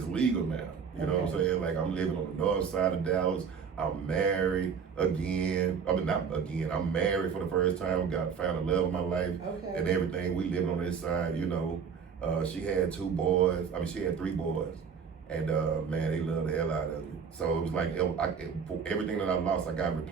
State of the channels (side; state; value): left; quieter; 6.5 dB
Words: legal now. You know what I'm saying? Like I'm living on the north side of Dallas. I'm married again. I mean, not again. I'm married for the first time. Found the love of my life and everything. We living on this side, you know. She had 2 boys. I mean, she had 3 boys. And man, they loved the hell out of me. So it was like everything that I lost, I got